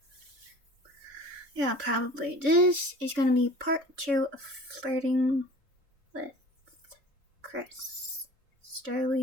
Yeah, probably. This is gonna be part 2 of Flirting with Chris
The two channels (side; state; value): left; late; 3.5 ms